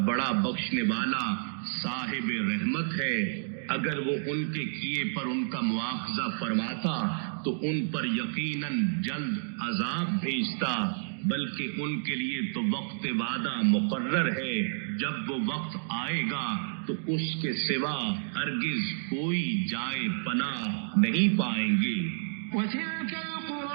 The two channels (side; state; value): left; silent; digital silence